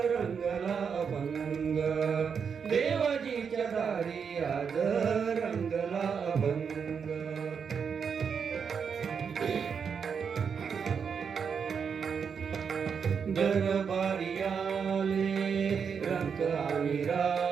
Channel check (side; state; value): left; quieter; 6.5 dB